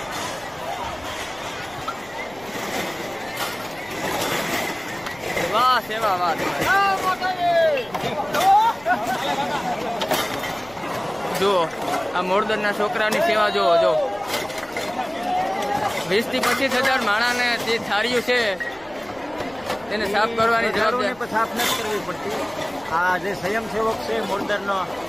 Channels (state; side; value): noise; left; rumble, 24 dB below the sound